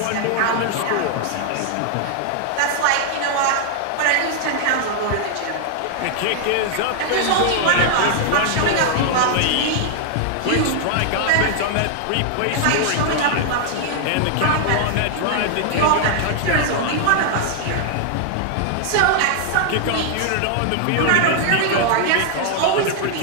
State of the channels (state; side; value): different; both; correlation 0.00